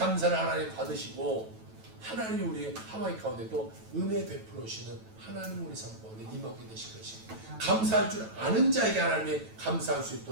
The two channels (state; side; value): late; left; 9.1 ms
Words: 하나님 받으시고 하나님이 우리 하와이 가운데 또 은혜 베풀어주시는 하나님 우리 삶 가운데 임하게 되실 것이 감사할 줄 아는 자에게 하나님이 감사할 수